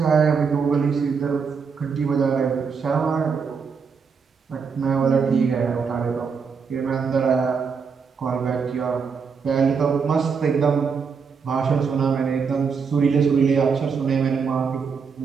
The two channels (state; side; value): quieter; left; 5.8 dB